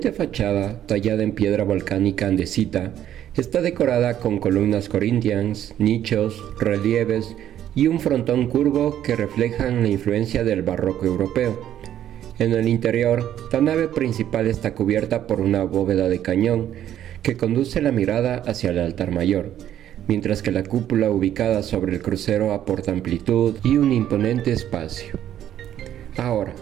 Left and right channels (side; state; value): left; quieter; 11.1 dB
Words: fachada, tallada en piedra volcánica andesita, está decorada con columnas corintias, nichos, relieves y un frontón curvo que reflejan la influencia del barroco europeo. En el interior, la nave principal está cubierta por una bóveda de cañón que conduce la mirada hacia el altar mayor, mientras que la cúpula ubicada sobre el crucero aporta amplitud y un imponente espacio. Ahora,